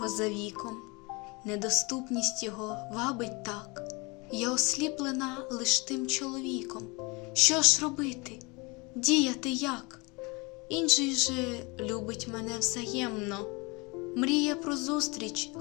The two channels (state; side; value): quieter; right; 27.1 dB